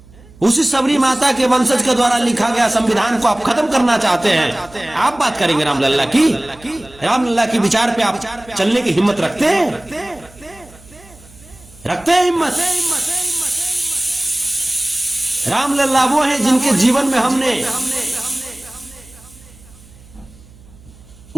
उसी शबरी माता के वंशज के द्वारा लिखा गया संविधान को आप खत्म करना चाहते हैं। आप बात करेंगे रामलल्ला की? रामलल्ला के विचार पे आप चलने की हिम्मत रखते हैं? रखते हैं हिम्मत? रामलल्ला वो हैं जिनके जीवन में हमने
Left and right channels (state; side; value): noise; right; hum, 24 dB below the sound